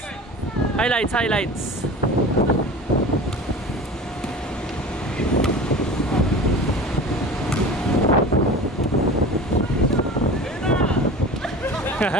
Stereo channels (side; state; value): both; normal; correlation 0.36